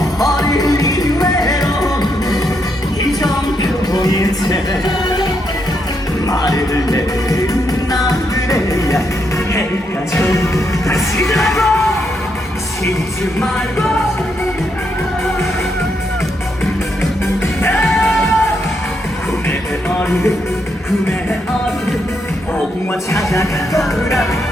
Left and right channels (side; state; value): both; normal; correlation 0.79